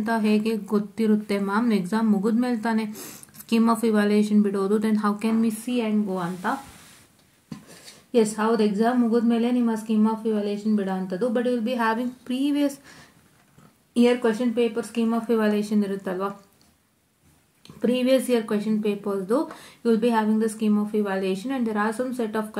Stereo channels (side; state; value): both; identical; correlation 1.00